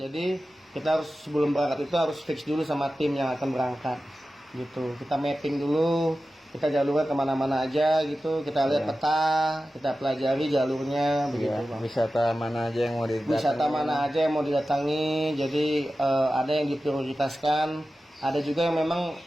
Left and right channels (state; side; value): normal; both; correlation 0.94